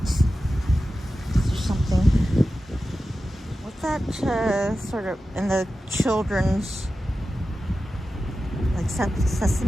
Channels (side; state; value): both; normal; correlation 0.93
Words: Is there something? What's that sort of in the children's, like